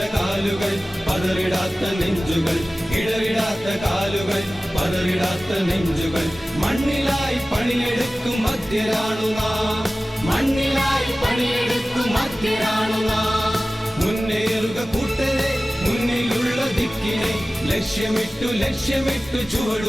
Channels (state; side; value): normal; both; correlation 0.96